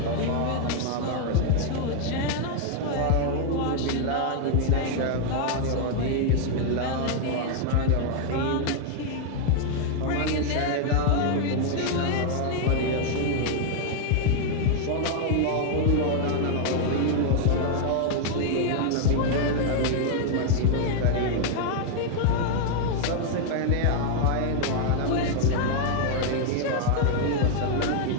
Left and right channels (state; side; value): different; both; correlation 0.00